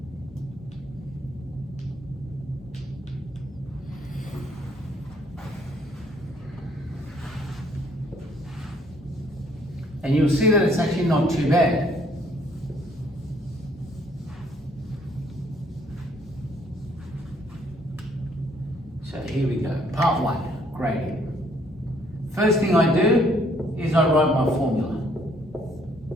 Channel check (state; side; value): normal; both; correlation 0.65